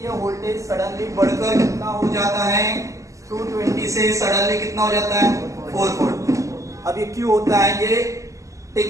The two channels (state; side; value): late; left; 0.16 ms